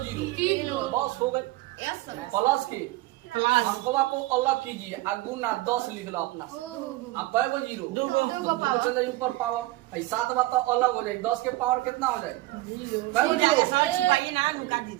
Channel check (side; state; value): left; quieter; 18.5 dB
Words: जीरो? 3 बस हो गए। प्लस की अंकवा को अलग कीजिए और गुना 10 लिख लो अपना से। अब कई गो जीरो? 2 चल जाए ऊपर पावर। 7 बात तो अलग हो जाए, 10 के पावर कितना हो जाए? कई गो जीरो? छिपाइए ना, नुका